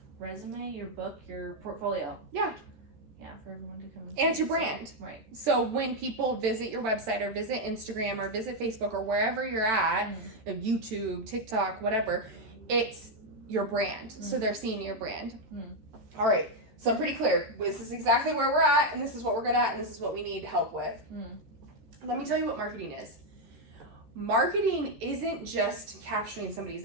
resume, your book, your portfolio. Yeah. Yeah, for everyone to come and it's your brand. Right. So when people visit your website or visit Instagram or visit Facebook or wherever you're at, YouTube, TikTok, whatever, it's your brand. So they're seeing your brand. All right. So I'm pretty clear. This is exactly where we're at, and this is what we're good at, and this is what we need help with. Let me tell you what marketing is. Marketing isn't just capturing somebody's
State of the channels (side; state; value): left; late; 14 ms